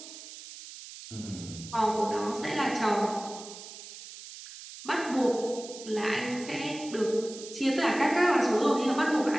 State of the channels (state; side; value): noise; right; hiss, 14 dB below the sound